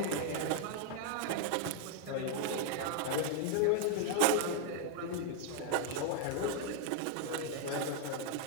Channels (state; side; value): different; both; correlation 0.00